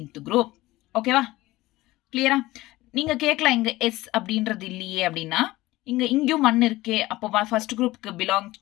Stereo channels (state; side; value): quieter; right; 18.3 dB